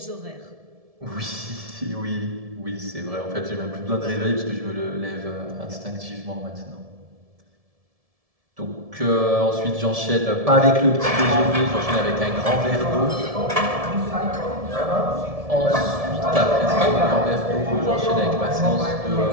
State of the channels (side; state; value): left; late; 1.7 ms